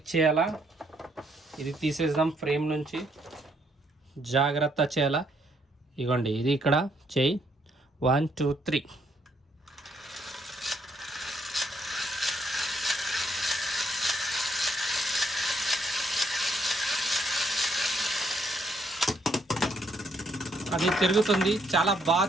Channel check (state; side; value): normal; both; correlation 0.71